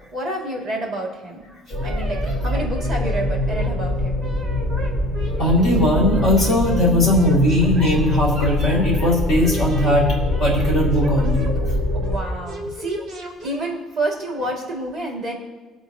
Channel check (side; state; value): both; normal; correlation 0.42